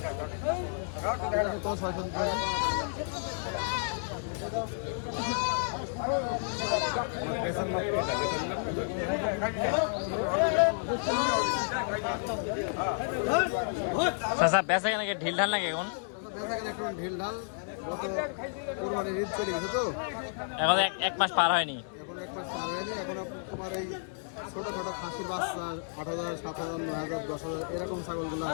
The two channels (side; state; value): right; silent; 57 dB below the other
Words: তো 600 টাকা চাচা বেচা কেন ঢিল ঢাল লাগে এখন? একটু ঢিল ঢাল গত কোরবানির ঈদ চলে গেছে তো এখন এক মাস পার হয়নি, এখন এক মাস পার হয়নি। এখন তোমার এই ছোটখাটো খাসির বাচ্চা 8,000 7,000 9,000 10,000 এরকম ছাগলগুলো